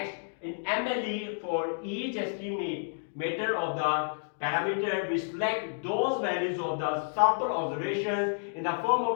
in MLE, for each estimator of the parameter, we select those values of the sample observations in the form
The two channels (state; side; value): silent; right; digital silence